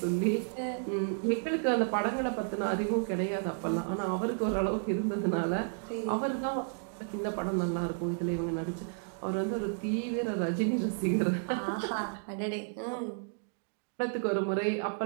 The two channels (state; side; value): silent; left; digital silence